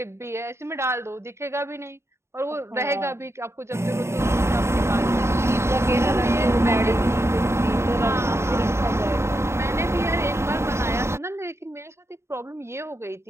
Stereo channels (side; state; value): left; late; 0.13 ms